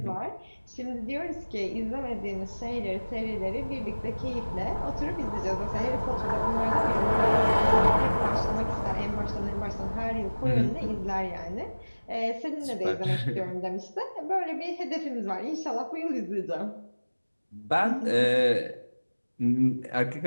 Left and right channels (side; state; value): both; inverted; correlation -1.00